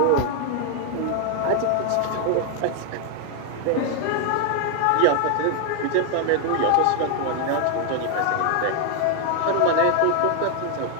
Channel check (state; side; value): different; both; correlation 0.01